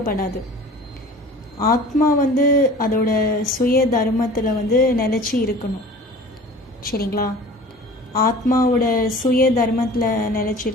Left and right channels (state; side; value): normal; both; correlation 0.42